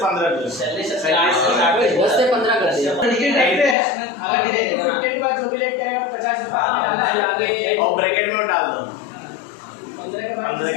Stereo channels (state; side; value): drops out; right; at 3.8 s